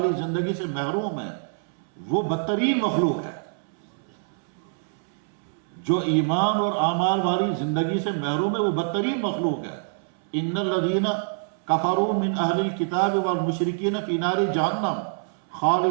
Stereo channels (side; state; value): left; silent; 61 dB below the other